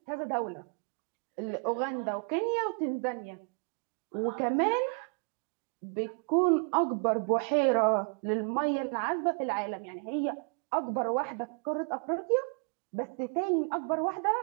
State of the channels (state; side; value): quieter; left; 38.1 dB